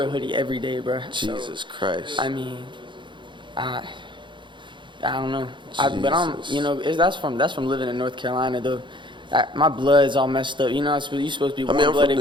a hoodie every day, bro. Jesus So, Christ. I mean, I don't know. But I'm, Jesus. you know, that's from living in North Carolina though. My blood's all messed up. You know, you're supposed to be I mean, I'm from warm-blooded,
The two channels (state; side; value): late; left; 0.23 ms